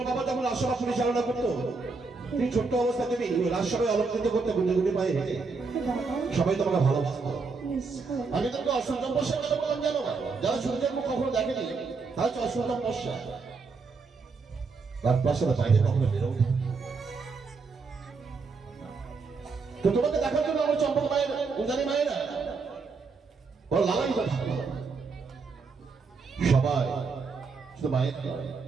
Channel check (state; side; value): quieter; left; 4.5 dB